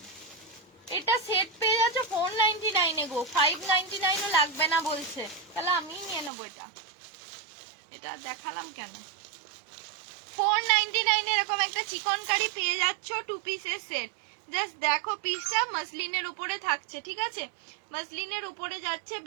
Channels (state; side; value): drops out; left; at 6.3 s